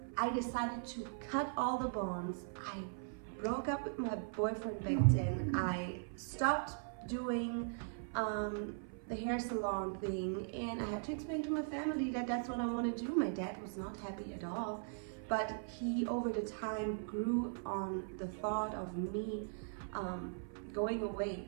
I decided to cut all the bonds. I broke up with my boyfriend back then. I stopped doing the hair salon thing, and I had to explain to my family that that's what I want to do. My dad was not happy at all, but he over the time grew on the thought of me going away.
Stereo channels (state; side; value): silent; left; 51 dB below the other